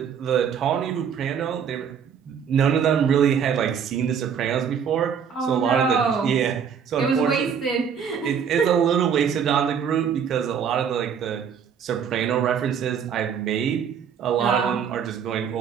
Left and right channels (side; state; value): left; quieter; 7.4 dB